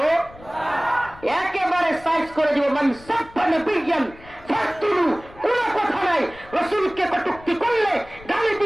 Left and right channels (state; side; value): noise; left; rumble, 21 dB below the sound